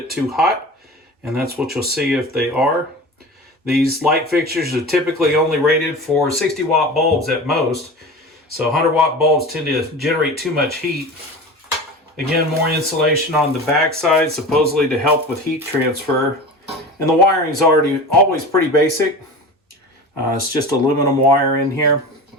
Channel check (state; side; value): normal; both; correlation 0.33